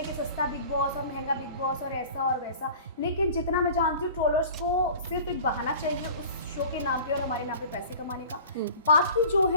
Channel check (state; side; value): inverted; both; correlation -0.42